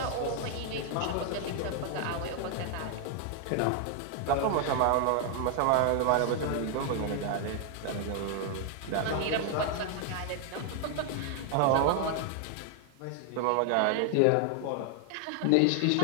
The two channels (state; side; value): different; both; correlation 0.00